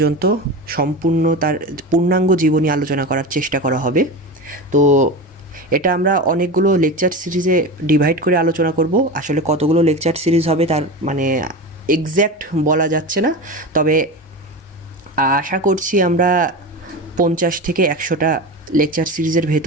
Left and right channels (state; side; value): normal; both; correlation 0.25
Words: সম্পূর্ণ তার পূর্ণাঙ্গ জীবনী আলোচনা করার চেষ্টা করা হবে। তো এটা আমরা অনেকগুলো লেকচার সিরিজে ডিভাইড করে আলোচনা করব। আসলে কতগুলো লেকচার সিরিজ হবে তার এক্স্যাক্ট বলা যাচ্ছে না, তবে আশা করছি আমরা 50 থেকে 100টা লেকচার সিরিজের